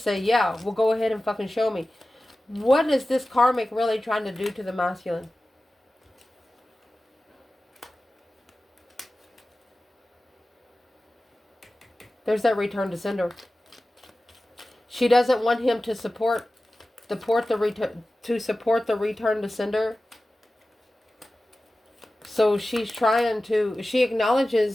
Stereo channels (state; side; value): normal; both; correlation 0.96